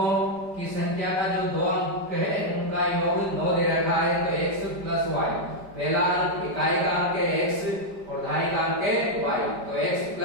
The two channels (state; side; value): late; left; 5.0 ms